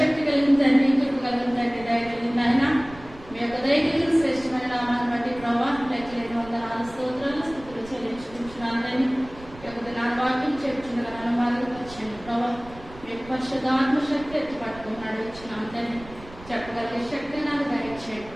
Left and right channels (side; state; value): right; noise; rumble, 18 dB below the sound